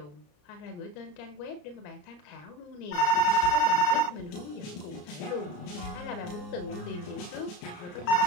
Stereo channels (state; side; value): late; right; 34 ms